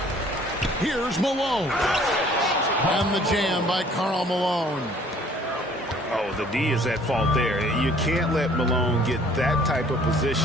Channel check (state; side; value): normal; both; correlation 0.56